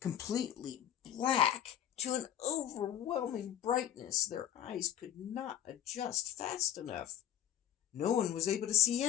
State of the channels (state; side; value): quieter; right; 10.7 dB